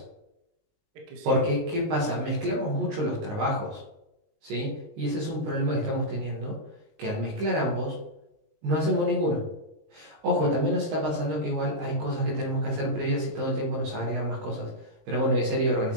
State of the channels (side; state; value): left; late; 19 ms